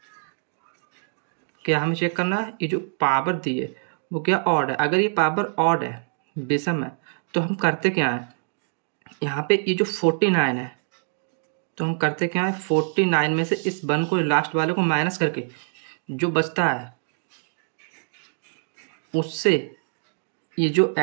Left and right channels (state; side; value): silent; left; digital silence